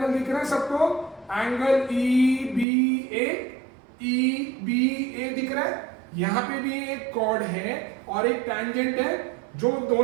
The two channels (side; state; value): left; drops out; at 2.7 s